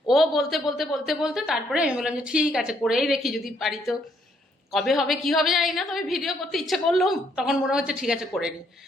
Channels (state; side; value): normal; both; correlation 0.70